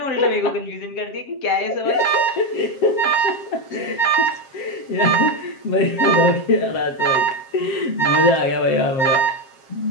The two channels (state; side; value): late; right; 7.5 ms